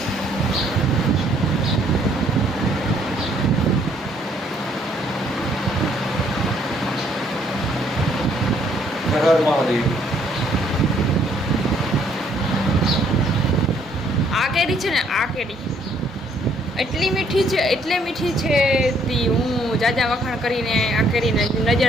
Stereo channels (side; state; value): both; normal; correlation 0.66